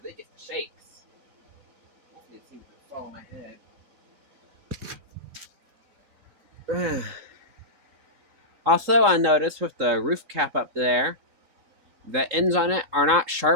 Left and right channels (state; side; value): late; left; 3.7 ms